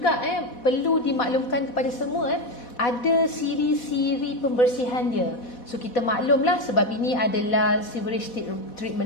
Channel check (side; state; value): right; late; 4.1 ms